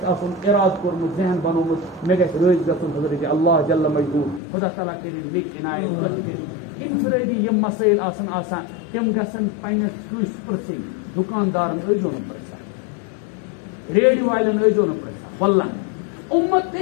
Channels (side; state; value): right; drops out; at 4.4 s